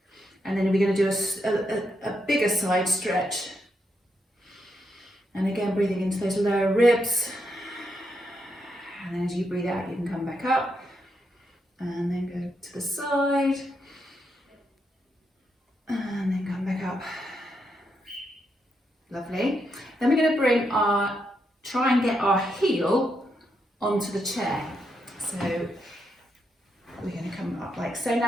and then we're going to do a bigger side stretch. And again, breathing into those lower ribs. And then as you breathe out, you can come back up and then go to the side and then come back up. Lovely. Then we're going to try and get our heel onto the chair. So we're going to come up like so.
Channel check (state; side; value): normal; both; correlation 0.81